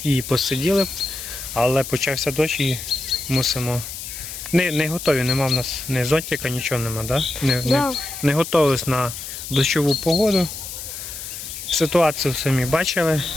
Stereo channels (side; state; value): left; noise; hiss, 9 dB below the sound